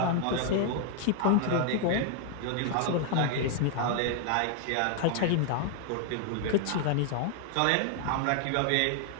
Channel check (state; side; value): different; both; correlation 0.00